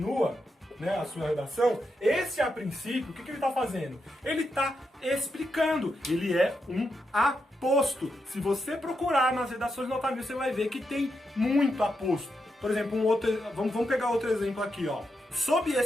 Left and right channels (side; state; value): both; normal; correlation 0.84